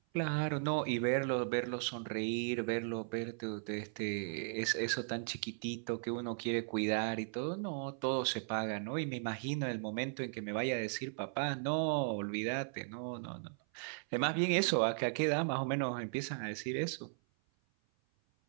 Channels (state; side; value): silent; left; 53 dB below the other